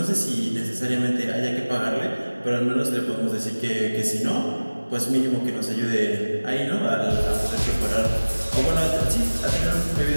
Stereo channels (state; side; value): inverted; both; correlation -1.00